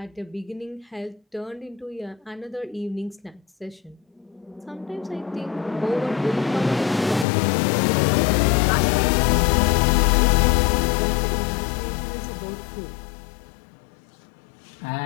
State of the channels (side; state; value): right; drops out; at 7.2 s